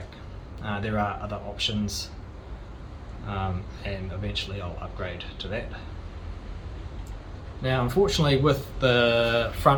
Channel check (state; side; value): identical; both; correlation 1.00